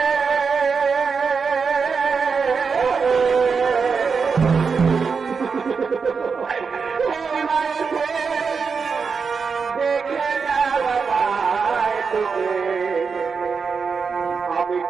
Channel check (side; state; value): left; quieter; 5.4 dB